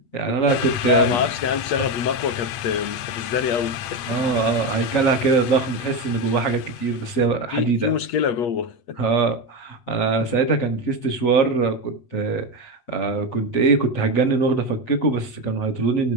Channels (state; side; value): late; right; 8.2 ms